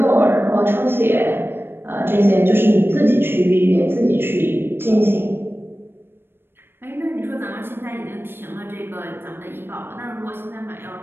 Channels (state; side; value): late; left; 0.10 ms